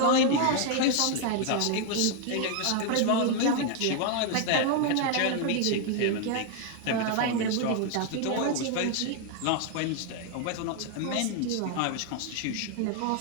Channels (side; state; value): both; different; correlation 0.00